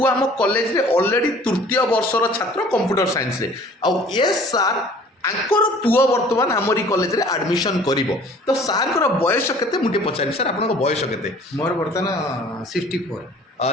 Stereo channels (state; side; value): normal; both; correlation 0.51